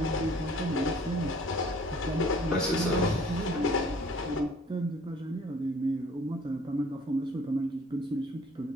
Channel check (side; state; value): both; normal; correlation 0.53